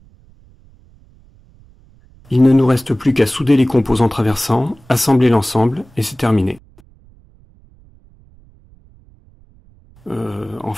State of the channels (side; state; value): right; noise; rumble, 28 dB below the sound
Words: Il ne nous reste plus qu'à souder les composants traversants, assembler l'ensemble et c'est terminé. En